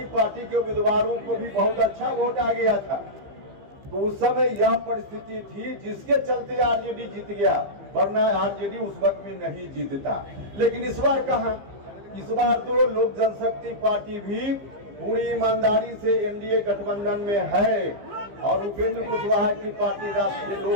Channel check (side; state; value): left; late; 15 ms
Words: पार्टी के उम्मीदवारों को भी बहुत अच्छा वोट आ गया था। तो उस समय यह परिस्थिति थी जिसके चलते आरजेडी जीत गया, वरना आरजेडी उस वक्त में नहीं जीतता। लेकिन इस बार कहां, इस बार तो लोक जनशक्ति पार्टी भी पूरी ईमानदारी से एनडीए गठबंधन में है और उपेंद्र कुशवाहा की पार्टी राष्ट्रीय